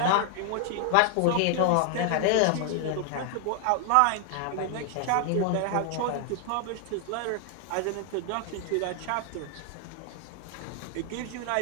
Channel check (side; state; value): both; different; correlation 0.00